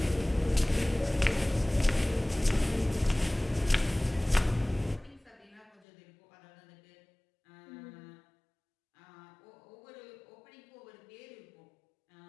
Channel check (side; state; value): right; drops out; at 5.8 s